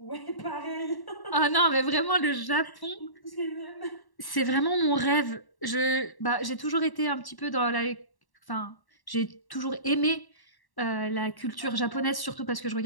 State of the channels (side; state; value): right; late; 1.1 ms